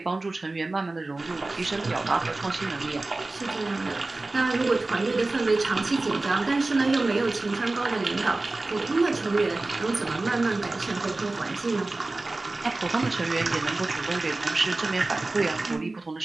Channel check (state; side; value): quieter; left; 3.1 dB